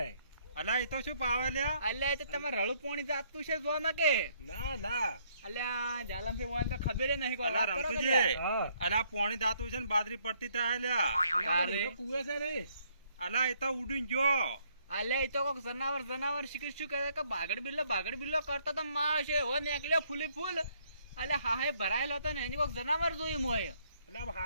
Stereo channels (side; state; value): both; inverted; correlation -0.68